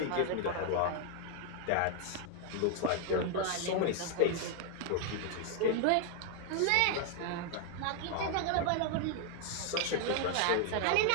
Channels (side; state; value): both; different; correlation 0.00